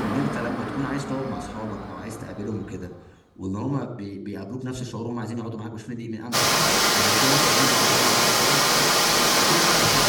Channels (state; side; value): identical; both; correlation 1.00